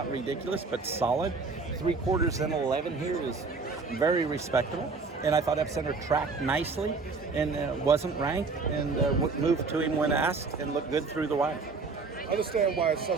ridiculous, but solid. 3/4 and 11 here is very respectable, and I thought Epicenter tracked nicely and wasn't ranked, and moved to him when asked and looked good through the wire. I understand why it's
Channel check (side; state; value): left; quieter; 4.3 dB